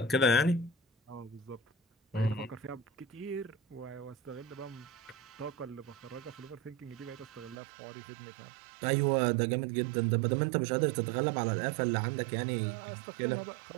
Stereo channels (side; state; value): left; drops out; at 7.6 s